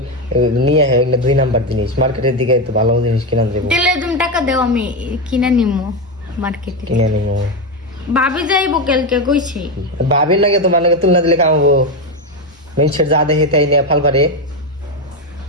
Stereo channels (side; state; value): both; normal; correlation 0.11